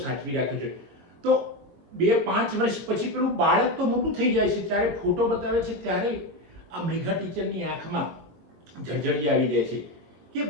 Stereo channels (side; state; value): left; late; 21 ms